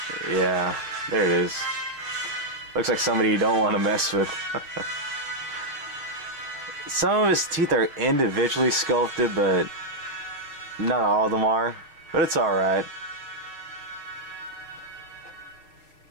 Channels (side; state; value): left; late; 6.6 ms